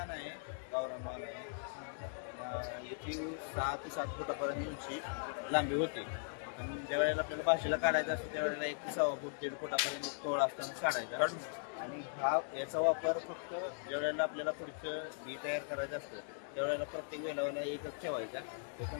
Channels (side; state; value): right; silent; digital silence